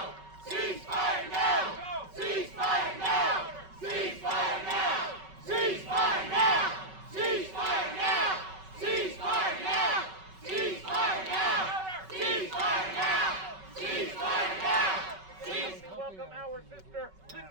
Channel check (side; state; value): left; late; 5.3 ms